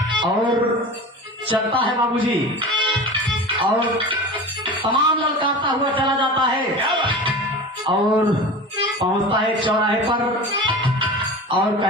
और चलता है बाबूजी और तमाम ललकारता हुआ चला जाता है और पहुंचता है चौराहे पर और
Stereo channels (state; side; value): normal; both; correlation 0.33